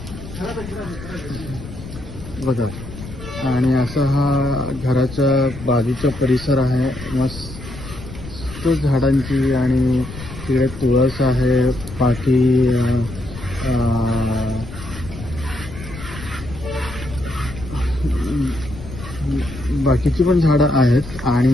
बघा. आणि असं हा घराच्या बाजूचा परिसर आहे मस्त झाडांची. आणि तिकडे तुळस आहे. बाकीची पण झाडं आहेत. आणि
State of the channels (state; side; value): noise; left; rumble, 13 dB below the sound